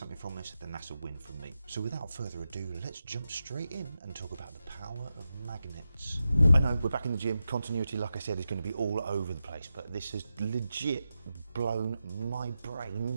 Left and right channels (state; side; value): inverted; both; correlation -0.91